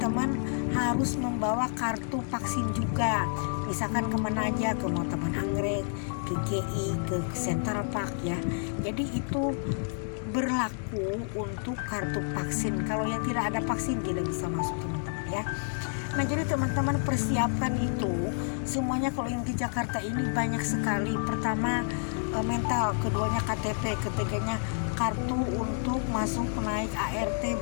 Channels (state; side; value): silent; right; 58 dB below the other